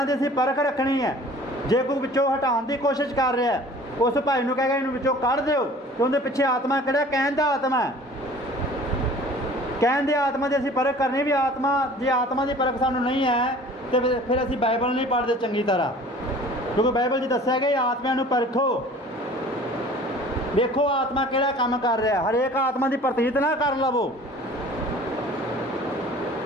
ਦੀ ਅਸੀਂ ਪਰਖ ਰੱਖਣੀ ਹੈ। ਜੇ ਕੋਈ ਵਿੱਚੋਂ ਹਟਾਉਣ ਦੀ ਕੋਸ਼ਿਸ਼ ਕਰ ਰਿਹਾ, ਉਸ ਭਾਈ ਨੂੰ ਕਹੇਗਾ ਇਹਨੂੰ ਵਿੱਚੋਂ ਕੱਢ ਦਿਓ, ਤੇ ਉਹਦੇ ਪਿੱਛੇ ਆਤਮਾ ਕਿਹੜਾ? ਕਹਿਣ ਦਾ ਆਤਮਾ ਹੈ। ਕਹਿਣ ਦੇ ਆਤਮਾ ਦੀ ਅਸੀਂ ਪਰਖ ਕਰਨੀ ਵੀ ਆਤਮਾ, ਜੇ ਆਤਮਾ ਦੀ ਪਰਖ ਸਾਨੂੰ ਨਹੀਂ ਹੈ ਤੇ ਫਿਰ ਅਸੀਂ ਬਾਈਬਲ ਨਹੀਂ ਪੜ੍ਹਦੇ ਚੰਗੀ ਤਰ੍ਹਾਂ, ਕਿਉਂਕਿ ਬਾਈਬਲ 'ਚ ਦੱਸਿਆ ਗਿਆ ਆਤਮਿਆਂ ਨੂੰ ਪਰਖੋ। ਵੇਖੋ ਆਤਮਾ ਕਿਹੜਾ ਕੰਮ ਕਰ ਰਿਹਾ। ਹਰੇਕ ਆਤਮਾ ਦੀ ਪ੍ਰਤੀਤ ਨਾ ਕਰ ਲਵੋ।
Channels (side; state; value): both; normal; correlation 0.47